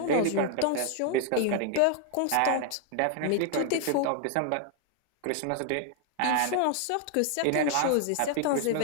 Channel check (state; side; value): different; both; correlation 0.00